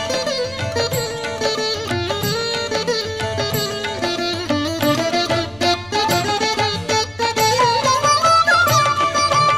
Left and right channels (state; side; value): noise; left; rumble, 24 dB below the sound